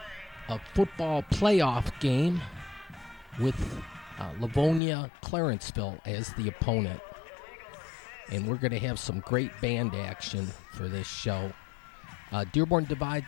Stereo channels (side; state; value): right; drops out; at 4.8 s